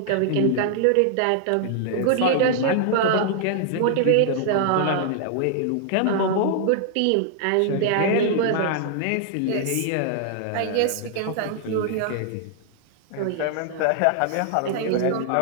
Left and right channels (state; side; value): different; both; correlation -0.01